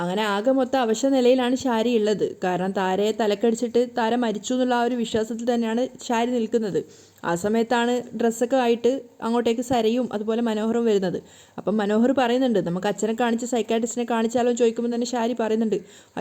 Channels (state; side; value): identical; both; correlation 1.00